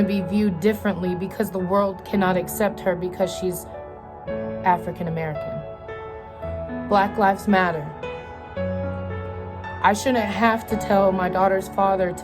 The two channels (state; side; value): identical; both; correlation 1.00